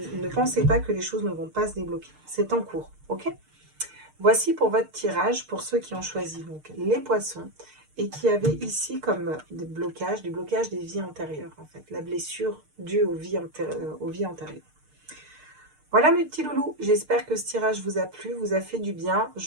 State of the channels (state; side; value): late; left; 6.6 ms